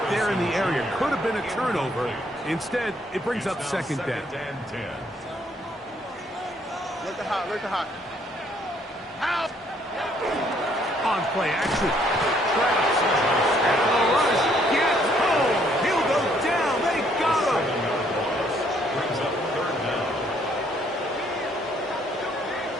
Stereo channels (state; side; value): normal; both; correlation 0.66